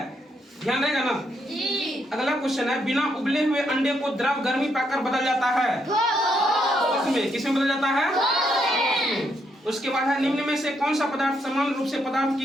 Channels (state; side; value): normal; both; correlation 0.77